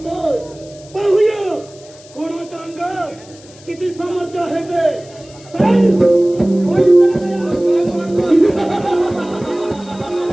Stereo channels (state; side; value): noise; left; hiss, 23 dB below the sound